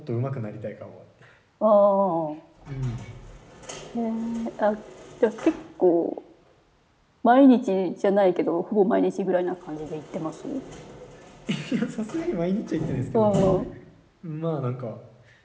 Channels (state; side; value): identical; both; correlation 1.00